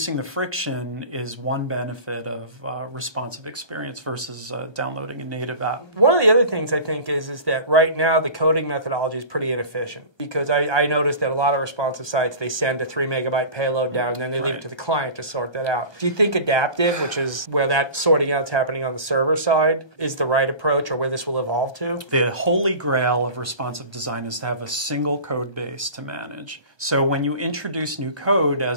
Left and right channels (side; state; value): right; late; 1.2 ms